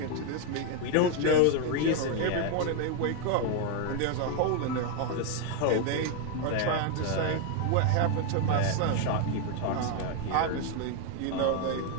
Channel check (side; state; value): both; different; correlation 0.01